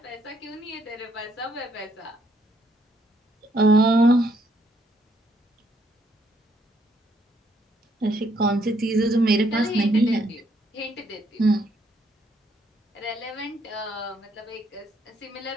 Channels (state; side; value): normal; both; correlation 0.71